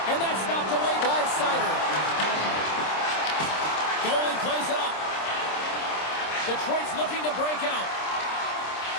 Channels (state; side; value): late; right; 26 ms